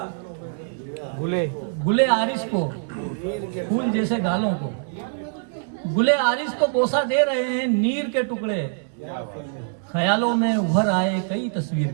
गुले आरिस को, फूल जैसे गालों को, गुले आरिस को बोसा दे रहे हैं नीर के टुकड़े। ख्यालों में उभर आए कई तस्वीर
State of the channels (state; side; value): silent; left; 63 dB below the other